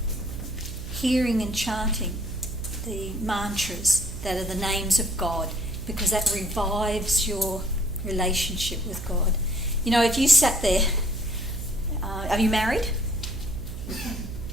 hearing and chanting the mantras that are the names of God, because that revives your relationship with God. If you sat there, are you married?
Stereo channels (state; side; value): noise; right; hum, 8 dB below the sound